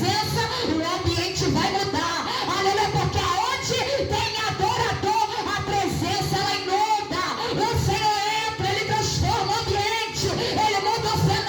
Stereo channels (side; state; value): both; identical; correlation 1.00